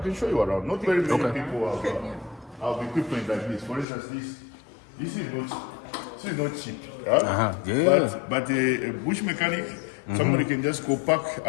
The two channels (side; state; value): right; drops out; at 3.9 s